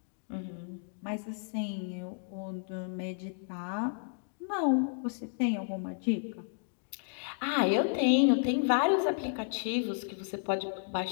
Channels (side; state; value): right; silent; digital silence